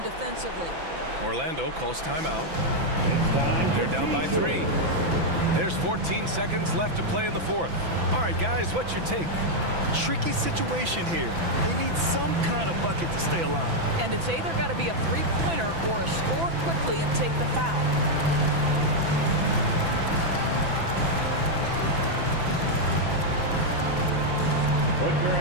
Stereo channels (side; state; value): left; late; 6.0 ms